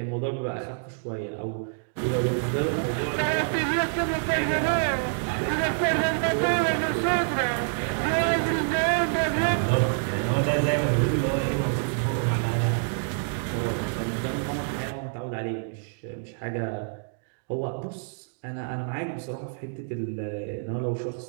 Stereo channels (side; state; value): left; silent; digital silence